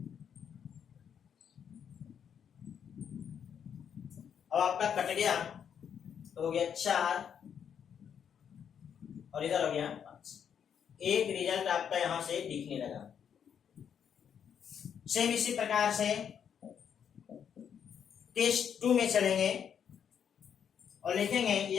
अब आपका कट गया तो हो गया 4 और इधर हो गया 5। एक रिजल्ट आपका यहां से दिखने लगा। सेम इसी प्रकार से टेस्ट 2 में चलेंगे और लिखेंगे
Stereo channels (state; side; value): quieter; right; 8.1 dB